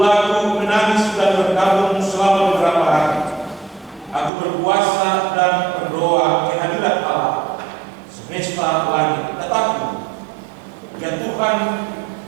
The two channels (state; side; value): drops out; left; at 4.3 s